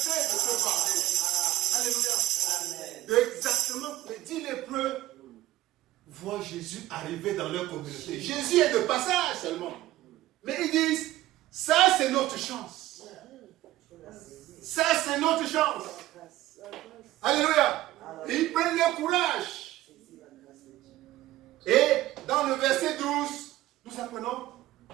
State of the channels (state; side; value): quieter; left; 15.8 dB